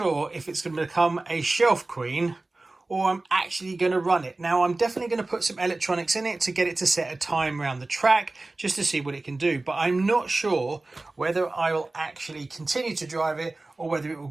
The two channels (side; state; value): left; quieter; 3.1 dB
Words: if it's going to become a shelf queen or I'm actually going to run it. Now, I'm definitely going to put some electronics in it to get it to set a time around the track just to see what it can do. But I'm not sure whether I will actually continue to drive it or whether it will